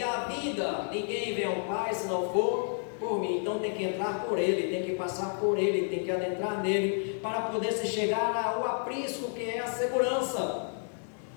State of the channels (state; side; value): silent; right; 57 dB below the other